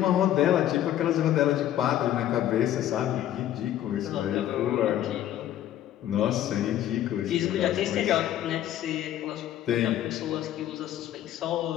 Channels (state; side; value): quieter; right; 12.0 dB